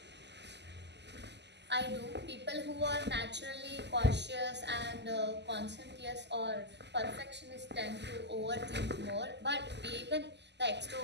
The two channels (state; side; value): late; left; 0.50 ms